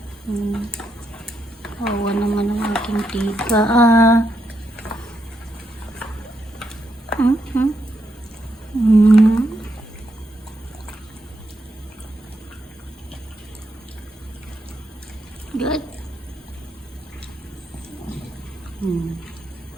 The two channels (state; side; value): normal; both; correlation 0.81